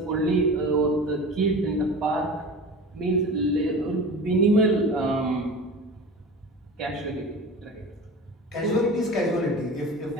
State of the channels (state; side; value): normal; both; correlation 0.35